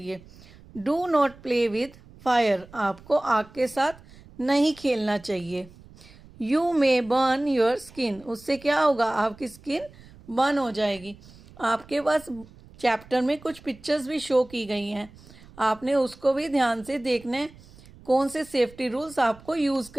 Do not play with fire. आपको आग के साथ नहीं खेलना चाहिए. You may burn your skin. उससे क्या होगा, आपकी स्किन बर्न हो जाएगी. आपके पास चैप्टर में कुछ पिक्चर्स भी शो की गई हैं, आपने उसको भी ध्यान से देखना है कौन से सेफ्टी रूल्स आपको यूज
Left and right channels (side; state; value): right; noise; rumble, 22 dB below the sound